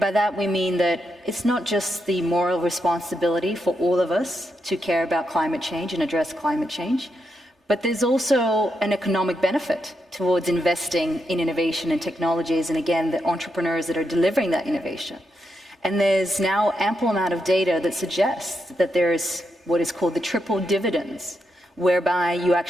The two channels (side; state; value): both; normal; correlation 0.83